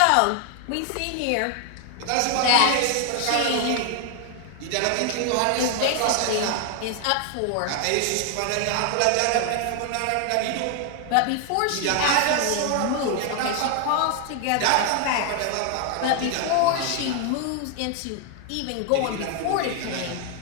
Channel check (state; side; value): different; both; correlation 0.00